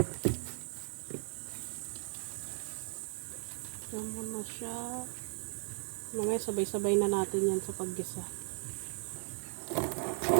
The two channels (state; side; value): silent; left; digital silence